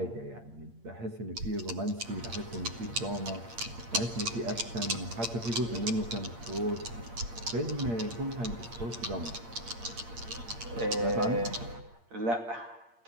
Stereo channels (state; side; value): late; left; 8.7 ms